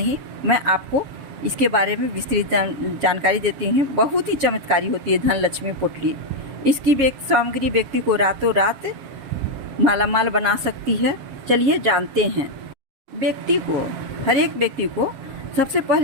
मैं आपको इसके बारे में विस्तृत जानकारी देती हूँ। बहुत ही चमत्कारी होती है धन लक्ष्मी पोटली। इसकी सामग्री व्यक्ति को रातों रात मालामाल बना सकती है। चलिए जानते हैं। हर एक व्यक्ति को सबसे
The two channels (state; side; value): late; left; 7.4 ms